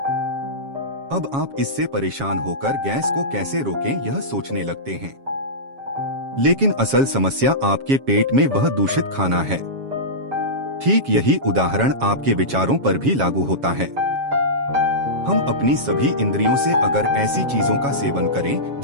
अब आप इससे परेशान होकर गैस को कैसे रोकें यह सोचने लगते हैं। लेकिन असल समस्या आपके पेट में वह दूषित खाना है। ठीक यही उदाहरण आपके विचारों पर भी लागू होता है। हम अपनी सभी इंद्रियों से अगर ऐसी चीजों का सेवन करें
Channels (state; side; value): late; left; 7.3 ms